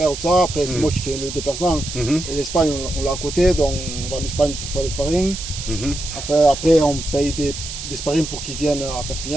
tout ça. Après, c'est moi qui fais le déplacement. Et l'Espagne, on l'a à côté, donc on va en Espagne pour faire le sparring. Après, on paye des sparring pour qu'ils viennent à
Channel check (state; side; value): noise; right; hiss, 8 dB below the sound